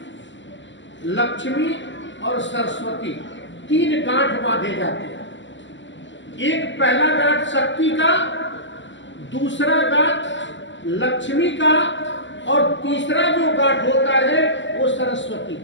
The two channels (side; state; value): right; late; 0.54 ms